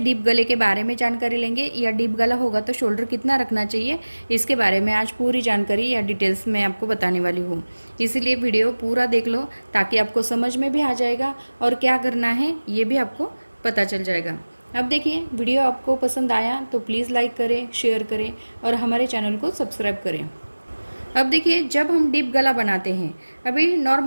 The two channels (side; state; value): both; inverted; correlation -1.00